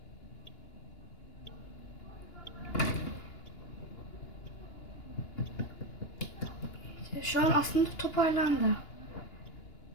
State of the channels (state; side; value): late; right; 2.9 ms